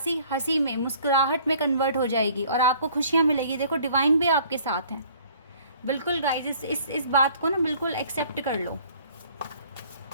हंसी में, मुस्कुराहट में कन्वर्ट हो जाएगी और आपको खुशियाँ मिलेगी। देखो डिवाइन भी आपके साथ है। बिल्कुल गाइज इस बात को ना बिल्कुल एक्सेप्ट कर लो।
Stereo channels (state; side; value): inverted; both; correlation -0.55